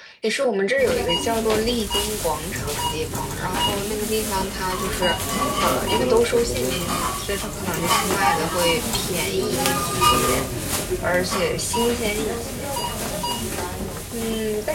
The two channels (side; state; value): both; identical; correlation 1.00